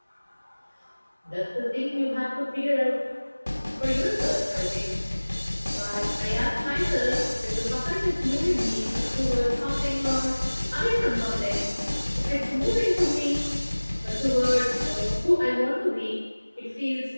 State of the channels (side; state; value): both; inverted; correlation -1.00